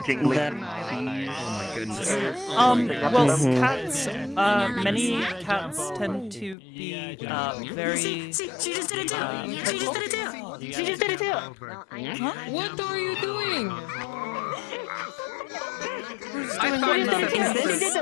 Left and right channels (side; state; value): right; drops out; at 6.6 s